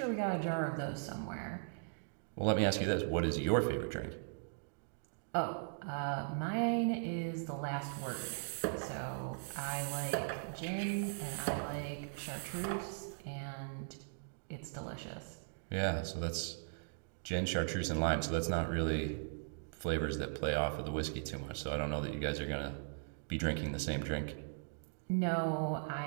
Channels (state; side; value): silent; left; digital silence